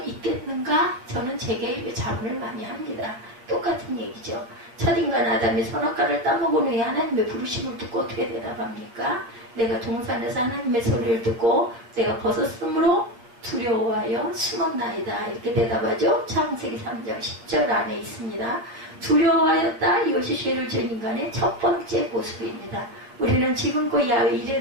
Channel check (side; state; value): left; late; 8.4 ms